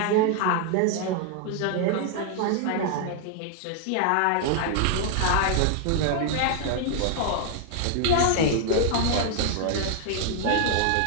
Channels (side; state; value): both; different; correlation 0.00